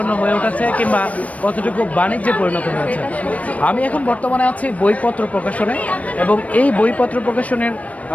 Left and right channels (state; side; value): late; right; 0.067 ms